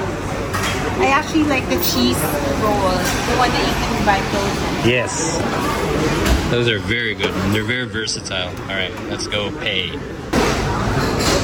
I actually like the cheese rolls, the one that you can buy frozen. Yes. Those are very good and they're very versatile. All right, let's go pay.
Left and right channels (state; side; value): identical; both; correlation 1.00